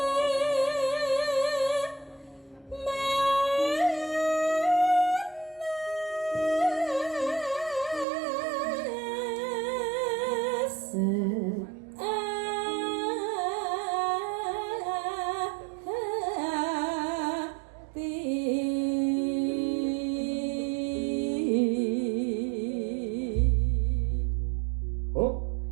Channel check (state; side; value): drops out; left; at 8.1 s